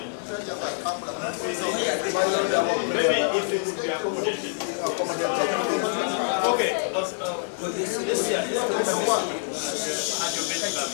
Maybe if it would be accommodated. Okay, this year,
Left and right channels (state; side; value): silent; right; 61 dB below the other